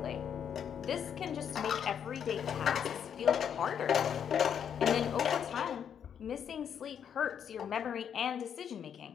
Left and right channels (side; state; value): right; quieter; 8.3 dB